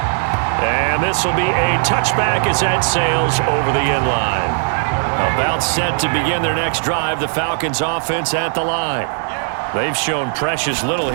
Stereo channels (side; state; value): left; silent; digital silence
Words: And this will be a touchback as that sails over the end line. About set to begin their next drive, the Falcons offense at the line. They've shown precious little